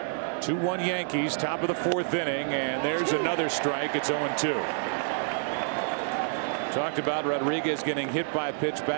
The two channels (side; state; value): left; silent; 59 dB below the other